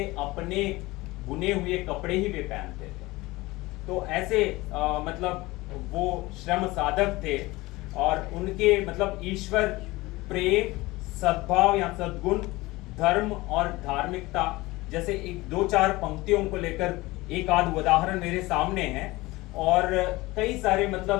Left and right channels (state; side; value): quieter; right; 20.6 dB